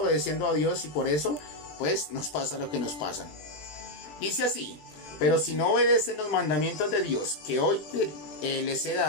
a Dios y por eso, pues, nos pasa lo que nos pasa. Dice así: pero si no obedecen los mandamientos de Dios que hoy les he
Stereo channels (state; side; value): late; right; 20 ms